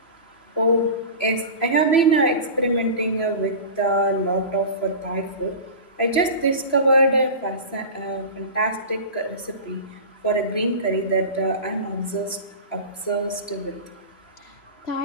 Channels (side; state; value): right; late; 3.0 ms